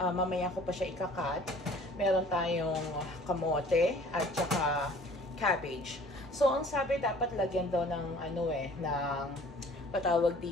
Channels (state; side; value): normal; both; correlation 0.51